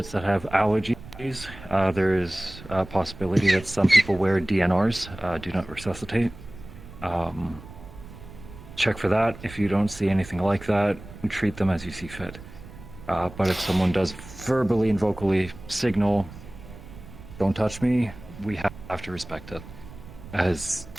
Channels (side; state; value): right; noise; rumble, 16 dB below the sound